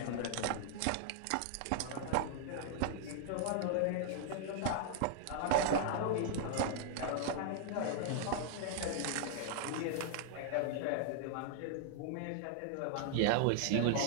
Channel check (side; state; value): both; different; correlation -0.01